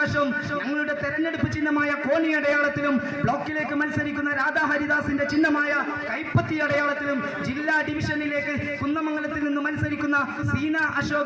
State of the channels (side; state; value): both; identical; correlation 1.00